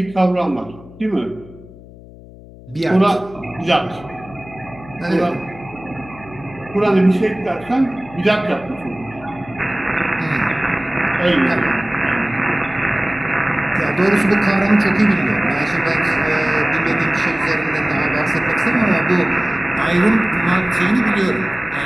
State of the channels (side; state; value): left; noise; hum, 19 dB below the sound